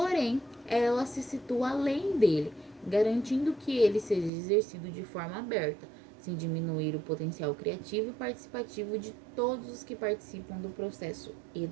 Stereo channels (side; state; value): left; drops out; at 4.3 s